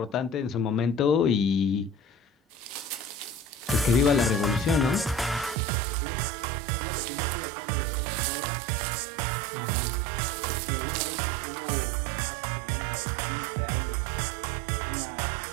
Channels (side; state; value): left; drops out; at 5.6 s